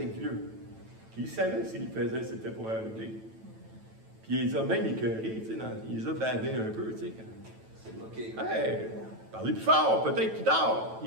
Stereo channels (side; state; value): left; late; 9.1 ms